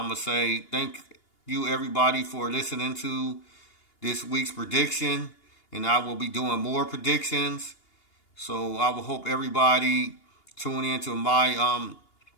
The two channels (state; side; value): late; right; 2.8 ms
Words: going to say thank you, everybody, for listening to this week's prediction, and I will be doing more predictions. So I will hope everybody tune in to my